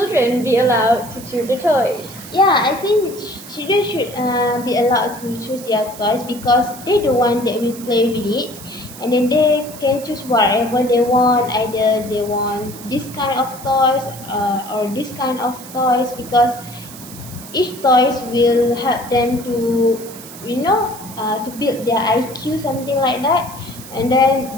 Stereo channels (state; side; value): noise; right; hiss, 16 dB below the sound